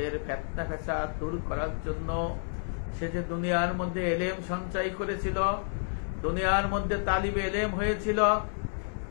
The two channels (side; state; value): right; silent; 58 dB below the other